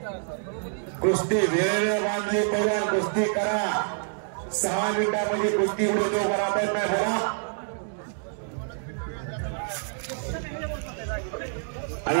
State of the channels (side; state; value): left; silent; digital silence